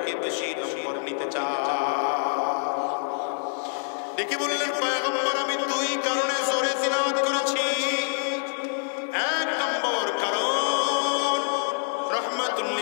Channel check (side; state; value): right; silent; digital silence